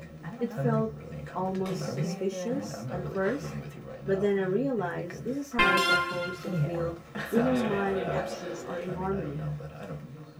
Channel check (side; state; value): both; identical; correlation 1.00